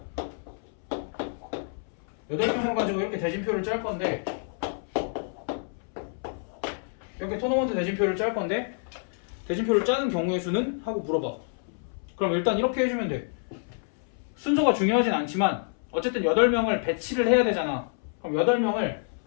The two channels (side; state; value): right; silent; 59 dB below the other